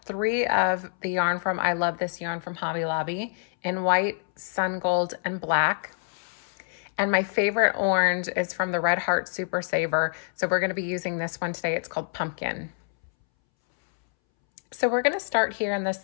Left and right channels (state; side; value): silent; right; 61 dB below the other